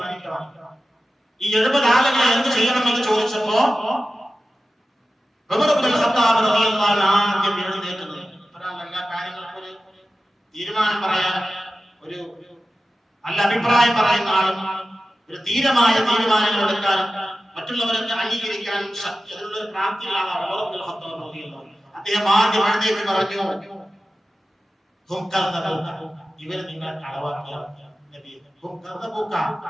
ഈ 70 ആളുകളെ എന്ത് ചെയ്യണമെന്ന് ചോദിച്ചപ്പോ ഉമർ ഇബ്നുൽ ഖത്താബ് റളിയല്ലാഹു അൻഹു ആദ്യം എഴുന്നേറ്റത് എല്ലാ കാര്യങ്ങൾക്കും ഒരു തീരുമാനം പറയാൻ, ഒരു നല്ല അഭിപ്രായം പറയുന്ന ആളും ഒരു ധീരമായ തീരുമാനങ്ങൾ എടുക്കാനും മറ്റുള്ളവരെ അംഗീകരിക്കാനും ശക്തി അതിനുള്ള പ്രാപ്തിയുള്ള ആളാണ് ഉമർ ഇബ്നുൽ ഖത്താബ് റളിയല്ലാഹു അൻഹു. അദ്ദേഹം ആദ്യം എഴുന്നേറ്റ് പറഞ്ഞു, ഇവർ നിങ്ങളെ കളവാക്കിയവരാണ്.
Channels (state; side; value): normal; both; correlation 0.94